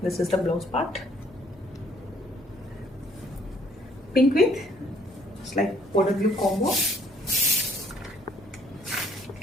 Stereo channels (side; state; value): both; normal; correlation 0.62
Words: this is the blouse part. Pink with like powder blue combo.